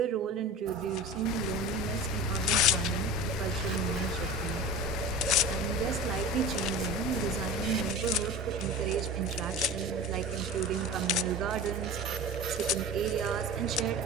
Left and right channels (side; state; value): both; normal; correlation 0.33